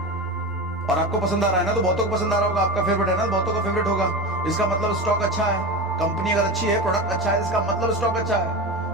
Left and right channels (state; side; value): normal; both; correlation 0.24